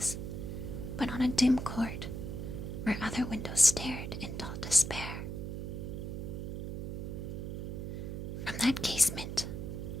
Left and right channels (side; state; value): right; noise; hum, 5 dB below the sound